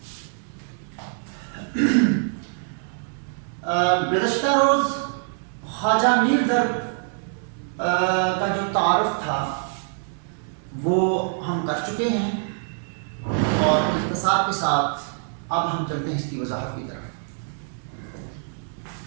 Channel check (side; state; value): left; silent; 62 dB below the other